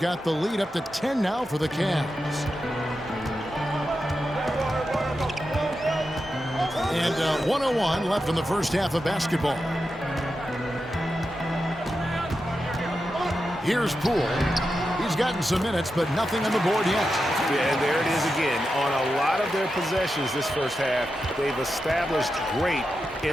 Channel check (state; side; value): normal; both; correlation 0.89